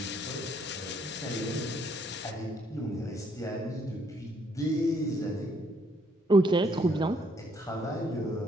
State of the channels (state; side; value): normal; both; correlation 0.69